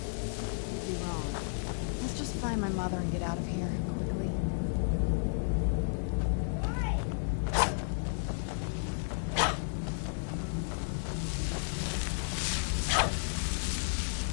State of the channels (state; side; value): silent; right; digital silence